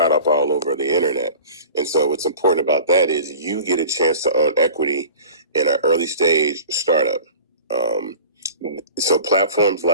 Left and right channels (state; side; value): inverted; both; correlation -0.40